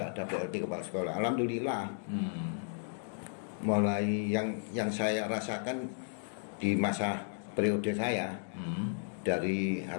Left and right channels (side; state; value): right; silent; digital silence